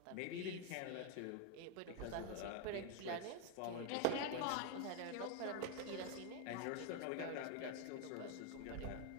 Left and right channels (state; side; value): different; both; correlation 0.01